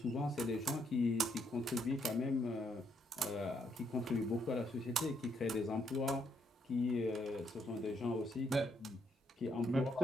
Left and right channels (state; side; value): normal; both; correlation 0.74